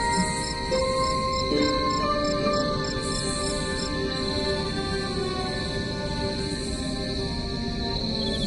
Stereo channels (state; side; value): identical; both; correlation 1.00